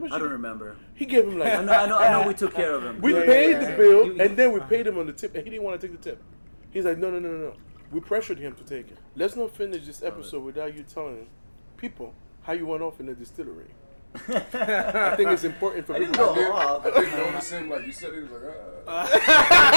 much? I don't remember. He gave him like. I know. We took care of him. We paid the bill, and then we paid him on the tip, and he didn't want to take the tip. He's like, no. We pressured him to take it. Let's not finish this episode without you telling people how you went off in the distillery. I think it's important for people. I didn't notice him. Like you said, he was like,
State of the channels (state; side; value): inverted; both; correlation -1.00